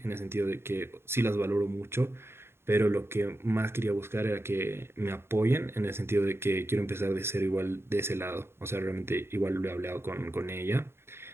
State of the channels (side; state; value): left; late; 0.12 ms